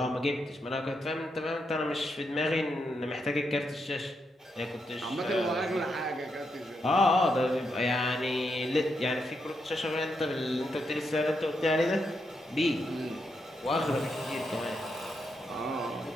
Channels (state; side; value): normal; both; correlation 0.82